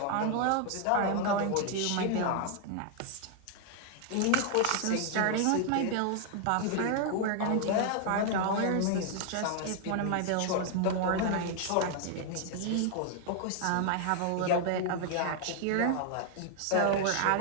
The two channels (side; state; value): both; different; correlation 0.00